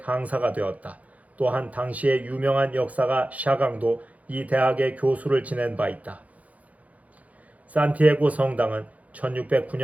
되었다. 또한 당시의 유명한 역사가 샤강도 이 대학의 교수를 지낸 바 있다. 산티아고 성당은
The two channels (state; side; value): late; left; 0.070 ms